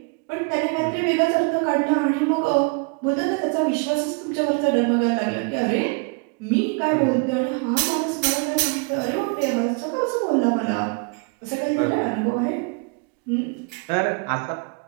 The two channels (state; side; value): quieter; left; 33.0 dB